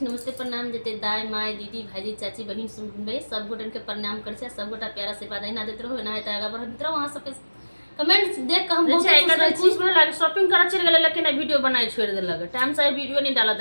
नमस्ते प्रणाम देते दाई माय दीदी भाईजी चाची बहन सुन भाई सब गोटन के प्रणाम कर छी। सब गोटा प्यारा से बात ना देते रहो ना है आगा बढ़त रहो। वहां सबके कमेंट्स देख के हम बहुत खुश रह छी। खुश भेल, शॉपिंग करे चल गेल लेकिन वीडियो बनाई छोड़ देलक, टाइम से वीडियो नहीं डाला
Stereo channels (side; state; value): both; inverted; correlation -1.00